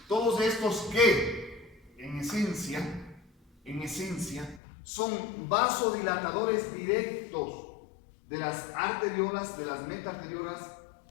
todos estos que en esencia son vasodilatadores directos de las arteriolas, de las metaarteriolas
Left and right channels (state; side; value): drops out; right; at 4.6 s